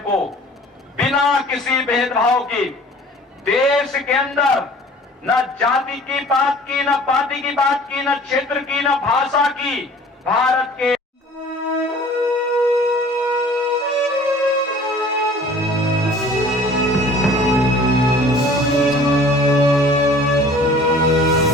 बिना किसी भेदभाव के देश के अंदर न जाति की बात की, न पार्टी की बात की, न क्षेत्र की, न भाषा की, भारत के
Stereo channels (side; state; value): both; normal; correlation 0.48